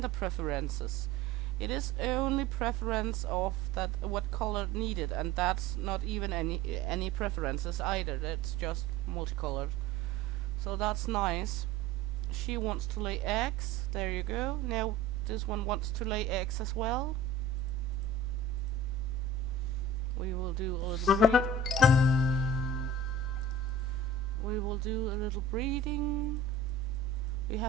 preferences. It is only preference of that what color needed, and that's not even any preferences either. That's just multicolored. So that's nice. She wants to lay eggs. There you go. Now this one wants to lay eggs as well. We will do a little breed. We will do a little breeding. We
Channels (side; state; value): left; quieter; 3.7 dB